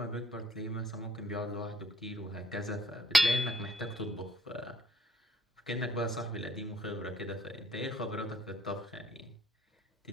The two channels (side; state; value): both; normal; correlation 0.61